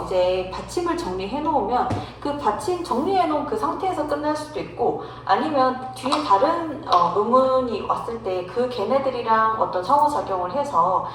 이제 받침을 정리해 놓으면 그 받침 정리해 놓은 그 상태에서 끝날 수도 있고 아니면 뒤에 다른 음운이 왔을 때 그 걔네들이랑 어떤 상호작용을 해서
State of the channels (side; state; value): both; identical; correlation 1.00